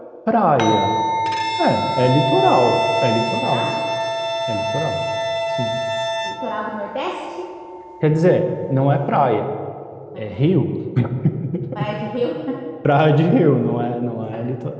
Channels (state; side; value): identical; both; correlation 1.00